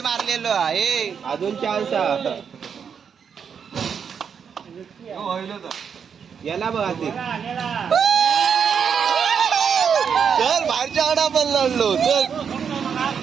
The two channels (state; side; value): quieter; left; 7.0 dB